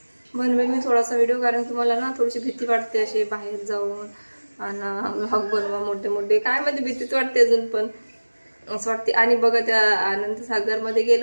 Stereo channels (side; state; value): both; inverted; correlation -1.00